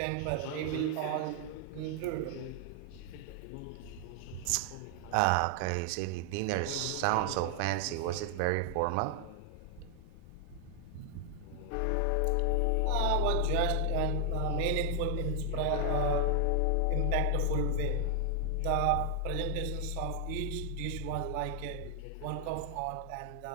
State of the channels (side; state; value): both; different; correlation 0.00